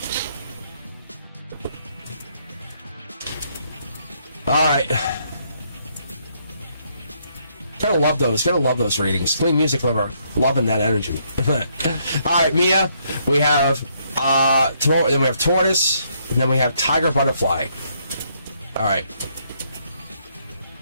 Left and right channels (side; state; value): both; inverted; correlation -0.72